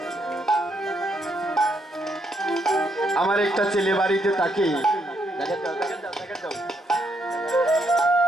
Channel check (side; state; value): both; normal; correlation 0.75